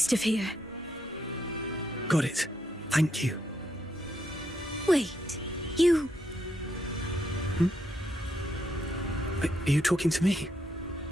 of here. Got it. Thank you. Wait, you... Are you talking to me?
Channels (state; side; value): normal; both; correlation 0.78